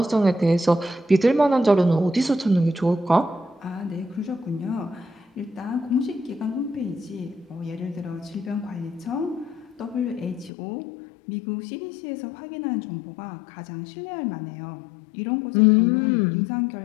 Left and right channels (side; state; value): right; drops out; at 10.5 s